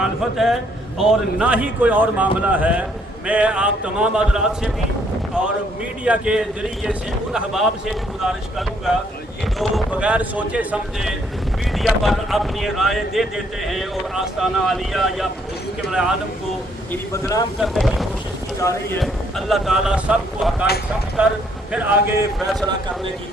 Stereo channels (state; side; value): normal; both; correlation 0.68